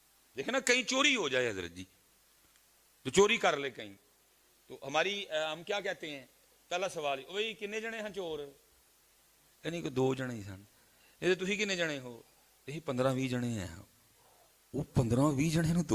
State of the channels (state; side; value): identical; both; correlation 1.00